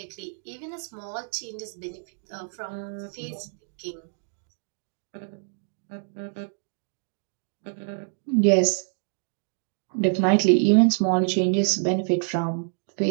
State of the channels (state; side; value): silent; left; 60 dB below the other